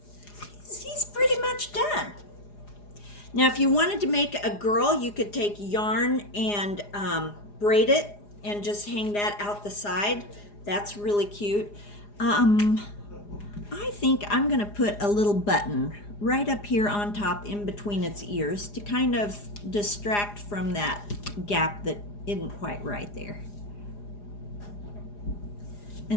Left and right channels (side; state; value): right; late; 4.9 ms